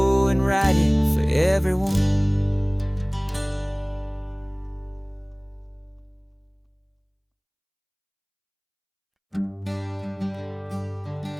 and write it for everyone.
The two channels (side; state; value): both; identical; correlation 1.00